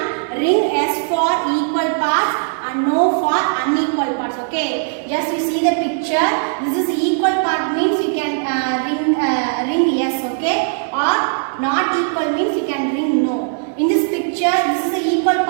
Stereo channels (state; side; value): silent; left; digital silence